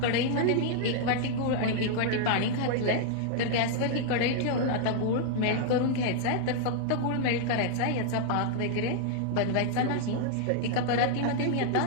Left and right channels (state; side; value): different; both; correlation -0.01